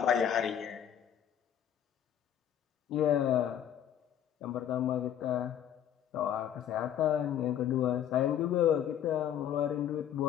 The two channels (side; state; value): right; quieter; 9.9 dB